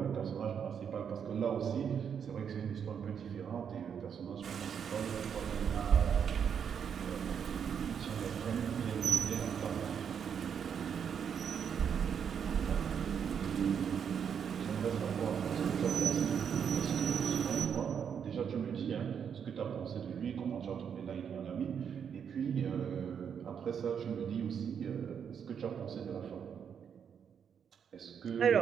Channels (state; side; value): quieter; left; 7.6 dB